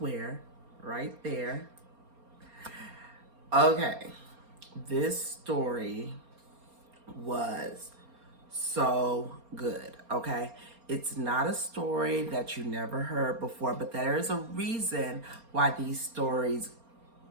right there. Okay, this story was so good, okay? It's not a story that you never heard before, but there is a reason why these stories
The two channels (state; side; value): late; left; 4.3 ms